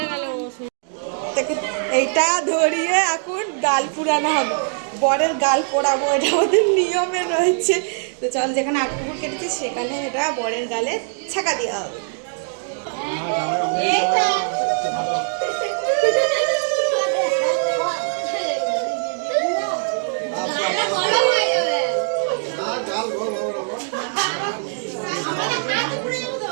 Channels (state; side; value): silent; left; 61 dB below the other